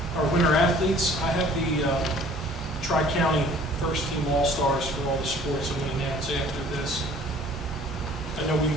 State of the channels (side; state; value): both; normal; correlation 0.52